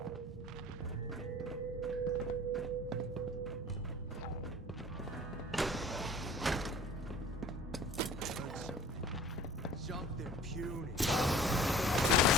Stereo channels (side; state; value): both; normal; correlation 0.46